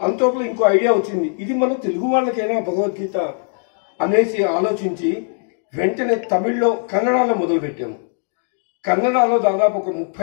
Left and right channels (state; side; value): silent; right; 66 dB below the other